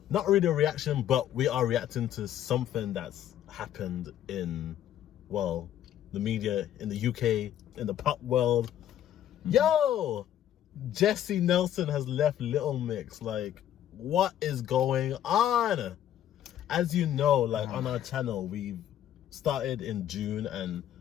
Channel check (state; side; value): quieter; right; 11.1 dB